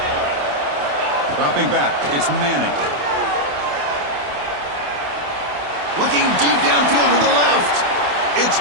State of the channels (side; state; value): left; late; 28 ms